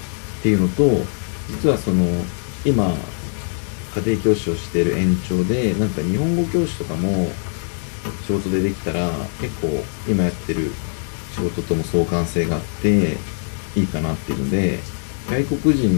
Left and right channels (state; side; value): silent; right; digital silence